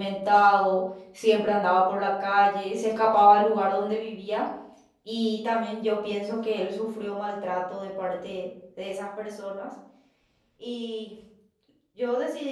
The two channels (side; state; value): both; identical; correlation 1.00